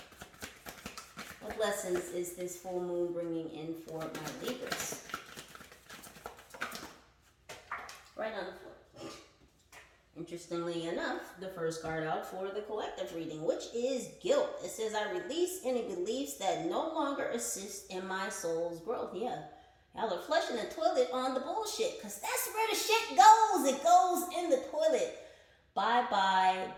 What lessons is this full moon bringing in for my Libras? Right on the floor. Interestingly enough, the first card out for the collective reading, which is guilt. It says, I release any beliefs that no longer assist in my soul's growth. Yeah, y'all are flushing the toilet on the bullshit, because that's where the shit goes. It goes in the toilet. Bye-bye,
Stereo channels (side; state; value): both; identical; correlation 1.00